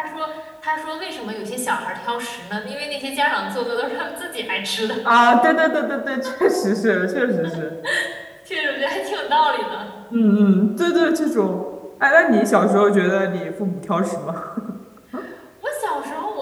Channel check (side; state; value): both; identical; correlation 1.00